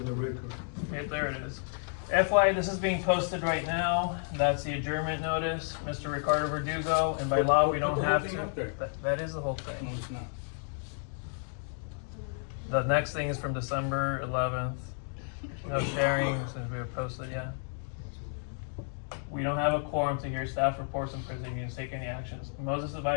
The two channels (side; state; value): right; silent; 57 dB below the other